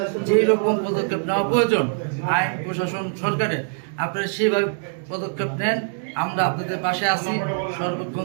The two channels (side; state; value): left; silent; 63 dB below the other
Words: যেই রকম পদক্ষেপ নেওয়া প্রয়োজন আইন প্রশাসন সরকারের, আপনারা সেইভাবে পদক্ষেপ নেন। আমরা আপনাদের পাশে আছি,